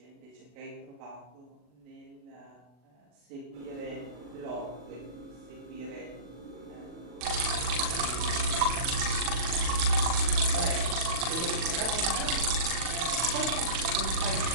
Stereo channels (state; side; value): late; left; 40 ms